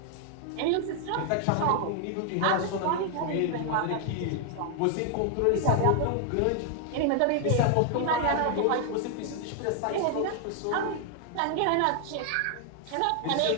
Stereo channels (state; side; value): different; both; correlation 0.00